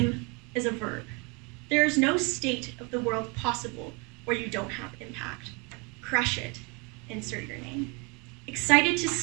is a verb. There is no state of the world possible where you don't have impact. Crush it. Insert your name. Excited to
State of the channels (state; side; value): quieter; left; 30.3 dB